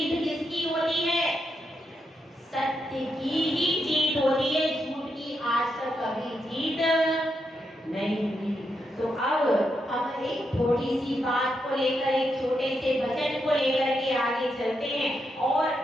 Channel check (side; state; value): both; normal; correlation 0.83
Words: किसकी होती है? सत्य की ही जीत होती है, झूठ की आज तक कभी जीत नहीं हुई। तो अब हम एक थोड़ी सी बात को लेकर, एक छोटे से भजन को लेकर के आगे चलते हैं और